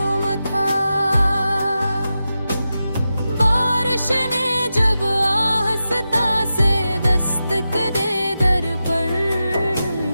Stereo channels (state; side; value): inverted; both; correlation -0.91